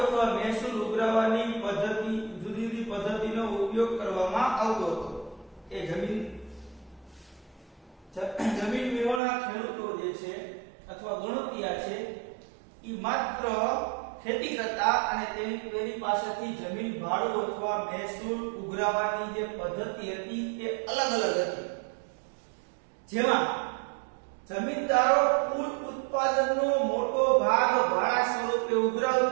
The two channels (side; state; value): left; drops out; at 9.2 s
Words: મહેસૂલ ઉઘરાવવાની પદ્ધતિ, જુદી જુદી પદ્ધતિનો ઉપયોગ કરવામાં આવતો હતો। એ જમીન વિહોણા ખેડૂતો જે છે અથવા ગણોતિયા છે એ માત્ર ખેતી કરતા અને તેની પાસેથી જમીન ભાડું અથવા મહેસૂલ ઉઘરાવવાની જે પદ્ધતિ હતી તે અલગ અલગ હતી। જેમાં જમીનદારો કુલ ઉત્પાદનનો મોટો ભાગ ભાડા સ્વરૂપે